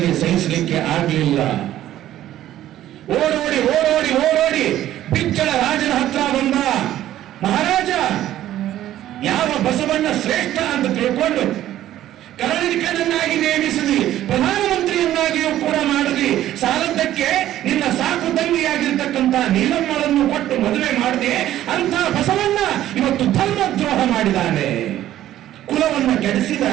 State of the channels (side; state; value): left; quieter; 13.0 dB